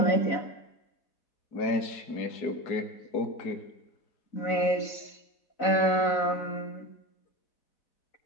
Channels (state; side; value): late; right; 4.0 ms